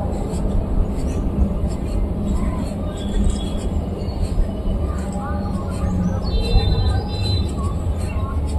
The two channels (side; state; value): both; identical; correlation 1.00